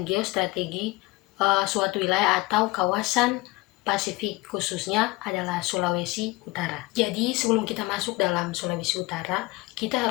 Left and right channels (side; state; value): right; quieter; 22.3 dB